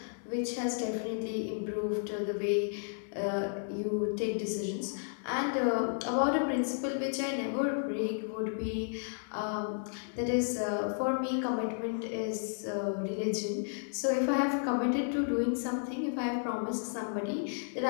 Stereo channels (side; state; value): right; silent; digital silence